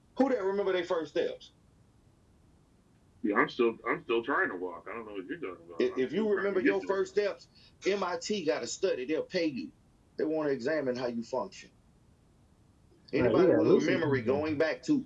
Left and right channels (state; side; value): identical; both; correlation 1.00